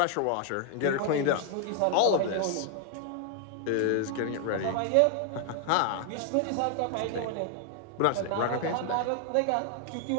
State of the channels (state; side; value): different; both; correlation 0.00